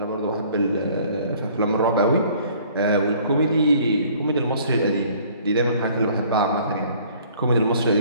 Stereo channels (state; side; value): inverted; both; correlation -0.56